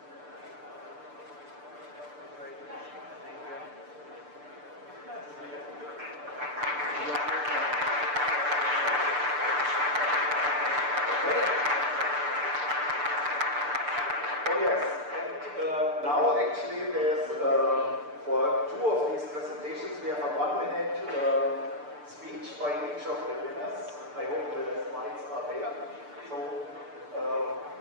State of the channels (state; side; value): late; left; 6.8 ms